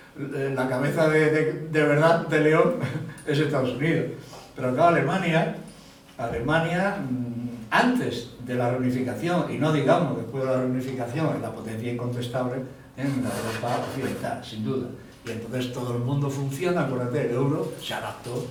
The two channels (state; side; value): identical; both; correlation 1.00